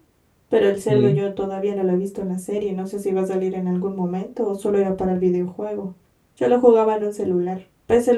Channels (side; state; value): both; identical; correlation 1.00